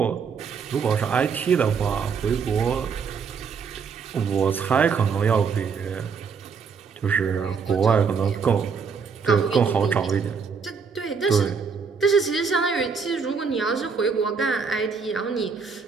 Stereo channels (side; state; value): left; quieter; 5.8 dB